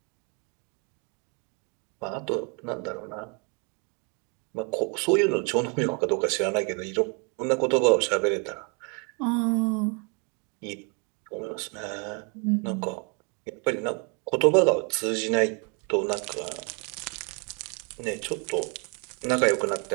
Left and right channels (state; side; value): quieter; left; 35.4 dB